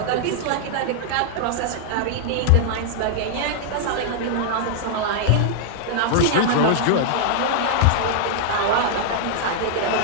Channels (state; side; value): different; both; correlation -0.01